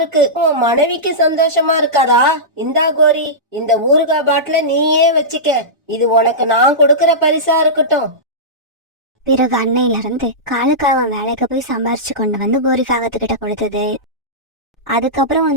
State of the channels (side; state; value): both; normal; correlation -0.15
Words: உன் மனைவிக்கு சந்தோஷமா இருக்காதா? இந்தா கோரி, இந்த ஊறுகாய் பாட்டில நீயே வச்சுக்க. இது உனக்கு நான் கொடுக்கற பரிசா இருக்கட்டும். பிறகு அன்னையில இருந்து காலுக்காக வேலைக்கு போய் சம்பாரிச்சு கொண்டு வந்து கோரிக்காகத்துக்கிட்ட கொடுத்தது. அதுக்கப்புறம்